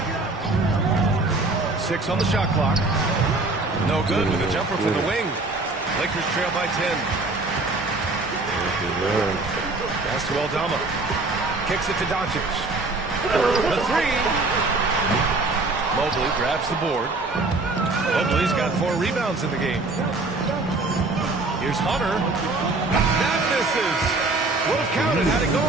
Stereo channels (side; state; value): left; quieter; 3.2 dB